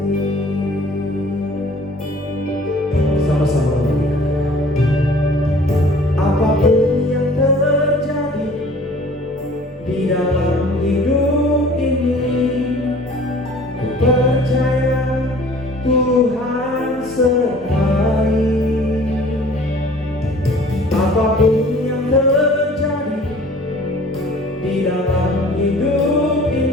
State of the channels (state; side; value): normal; both; correlation 0.49